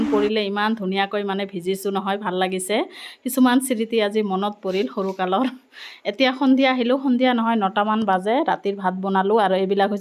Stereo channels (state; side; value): identical; both; correlation 1.00